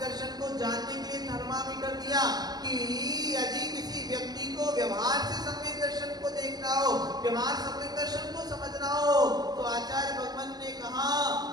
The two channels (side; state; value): left; late; 0.19 ms